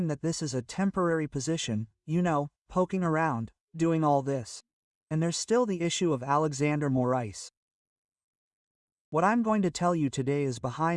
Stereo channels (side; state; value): both; identical; correlation 1.00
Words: that this is a temporary position, poking around, doing all this. And there's still the issue of Alexandre Moraes. What I'm going to tell you today is